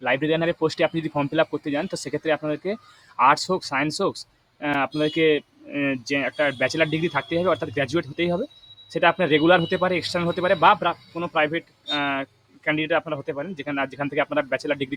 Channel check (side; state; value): both; identical; correlation 1.00